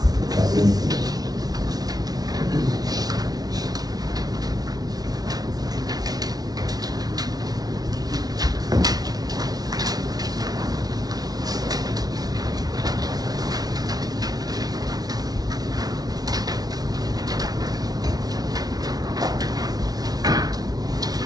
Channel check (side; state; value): left; late; 0.19 ms